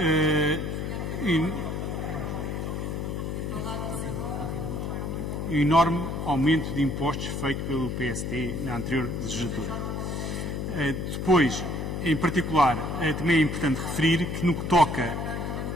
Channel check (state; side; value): noise; left; hum, 3 dB below the sound